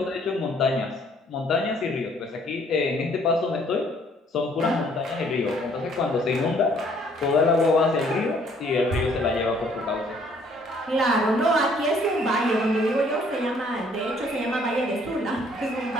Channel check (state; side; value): normal; both; correlation 0.62